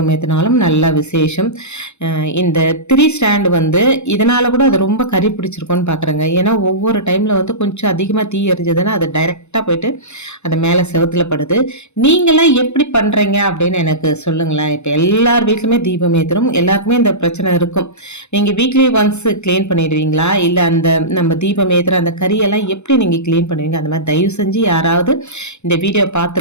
ஏற்றினாலும் நல்ல விசேஷம். இந்த 3 ஸ்டாண்டு வந்து இதனால் கூட அது ரொம்ப கறி பிடிச்சிருக்கோன்னு பார்க்குறேங்க. ஏன்னா ஒவ்வொரு டைமில் வந்து கொஞ்சம் அதிகமாக தீ எரிஞ்சதுன்னா அது டைரெக்டாக போயிட்டு அது மேலே செவுத்தில் படுது. நீங்களாம் எப்படி பண்ணுறீங்க அப்படின்னு எனக்கு சொல்லுங்களேன். இப்போ எல்லார் வீட்லையுமே தீபம் ஏற்றுறோம். எல்லாருக்குமே இந்த பிரச்சனை இருக்கும். நீங்கள் வீக்லி ஒன்ஸ் க்ளீன் பண்ணிடுவீங்களா? இல்லை அந்த நம்ம தீபம் ஏற்றுற அந்த கறியெல்லாம் எப்படி நீங்கள் க்ளீன் பண்ணுவீங்க? அந்த மாதிரி தயவு செஞ்சு யாராவது இந்த வீடியோ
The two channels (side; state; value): right; late; 0.82 ms